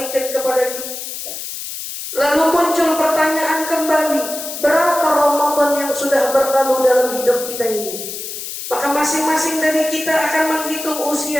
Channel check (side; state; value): left; noise; hiss, 8 dB below the sound